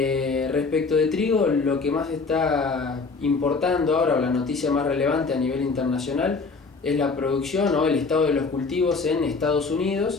de trigo, lo que más está importando ahora, o la noticia más relevante a nivel internacional, es la producción o el estado de los cultivos en Estados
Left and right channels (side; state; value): right; quieter; 4.3 dB